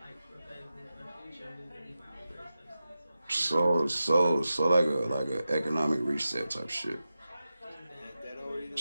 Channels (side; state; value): both; inverted; correlation -0.92